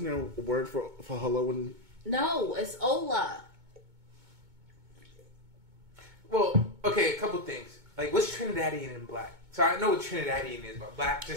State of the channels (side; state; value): left; late; 2.2 ms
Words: there a word for hello? And No, it's hola. Well, okay, a couple things. Like, what's Trinidadian and black? So I know what Trinidadian is, but black,